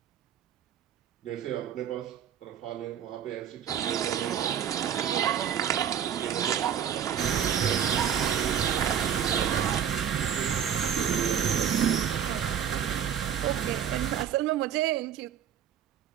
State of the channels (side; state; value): left; quieter; 8.9 dB